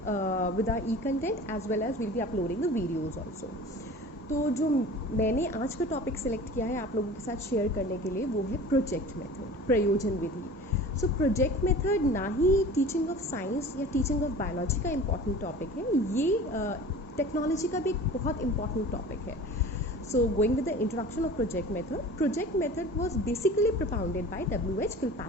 with our e-content as well as we'll be uploading the videos also. तो जो मैंने आज का topic select किया है आप लोगों के साथ शेयर करने के लिए वो है प्रोजेक्ट मेथड, प्रयोजन विधि. सो प्रोजेक्ट मेथड ना ही टीचिंग ऑफ साइंस या टीचिंग ऑफ बायोलॉजी का इम्पॉर्टेंट टॉपिक है, ये टेक्नोलॉजी का भी एक बहुत इंपॉर्टेंट टॉपिक है. So going with the introduction of project method was basically propounded bye W.H.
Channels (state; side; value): normal; both; correlation 0.40